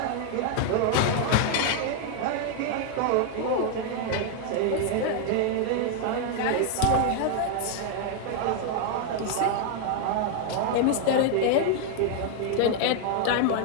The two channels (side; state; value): both; different; correlation 0.00